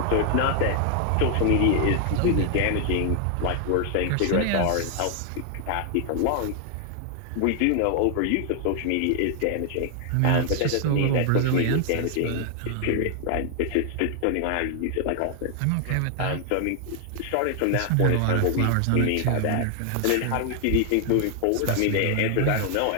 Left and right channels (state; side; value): different; both; correlation 0.00